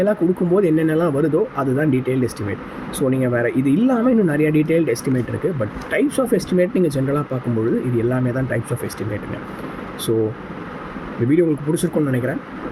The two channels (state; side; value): identical; both; correlation 1.00